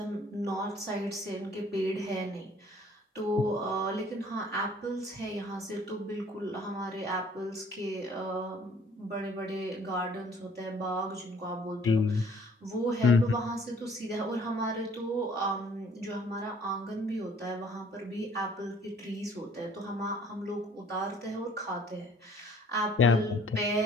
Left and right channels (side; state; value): both; normal; correlation 0.57